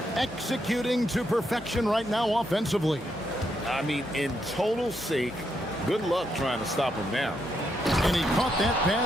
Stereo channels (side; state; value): both; normal; correlation 0.79